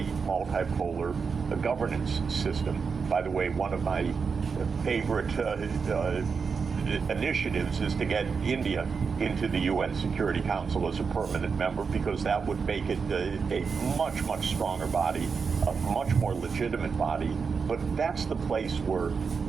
multipolar governance system. By the way, one of my favorite initiatives is to get India into the UN Security Council as a permanent member, because that would make it a much, much stronger body, a much more legitimate body. But that's the place where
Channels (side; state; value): left; quieter; 5.5 dB